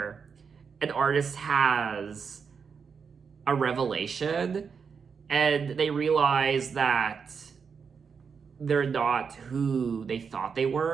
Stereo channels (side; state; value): left; quieter; 6.0 dB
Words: an artist has a revelation and they realize that they're not who they thought they